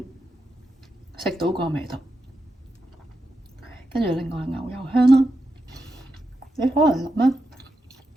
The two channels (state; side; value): normal; both; correlation 0.87